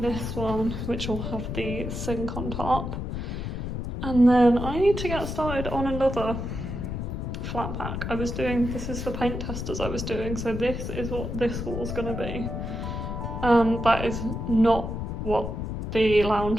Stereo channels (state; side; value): noise; left; rumble, 4 dB below the sound